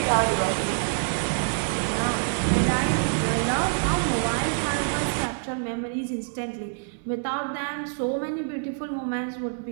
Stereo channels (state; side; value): silent; left; digital silence